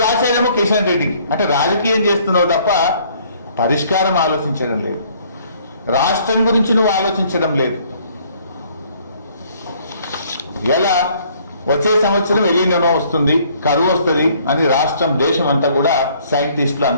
రాసేదేమో కిషన్ రెడ్డికి. అంటే రాజకీయం చేస్తున్నావు తప్ప పరిష్కారం ఆలోచించడం లేదు. రాష్ట్రం గురించి నువ్వు ఆలోచించడం లేదు. ఎలా వచ్చే సంవత్సరం ఎలినో వస్తుంది, కరువు వస్తుంది అని రాష్ట్రం దేశం అంతా కూడా సైంటిస్టులు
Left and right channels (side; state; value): both; inverted; correlation -0.61